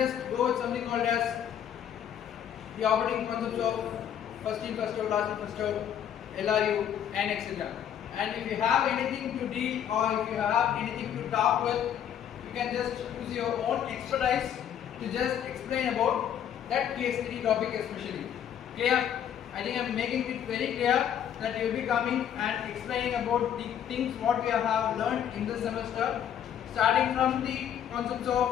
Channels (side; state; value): right; quieter; 9.5 dB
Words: go with something called as the operating concepts of first in, first out, last in, first out, LRU and etc. And if you have anything to deal or if you have anything to talk with, you can just use your own expertise to just explain about that case study topic especially. Clear? I think I am making it very clear that you will be coming and explaining about the things what we have learned in this semester, starting from the concepts